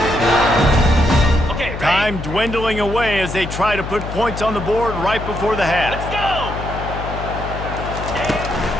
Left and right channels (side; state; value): left; noise; hum, 7 dB below the sound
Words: Okay, ready? Time dwindling away as they try to put points on the board right before the half. Let's go!